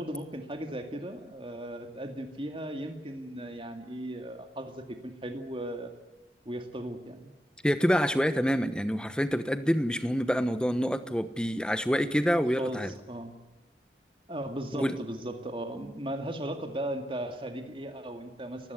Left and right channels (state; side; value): normal; both; correlation 0.88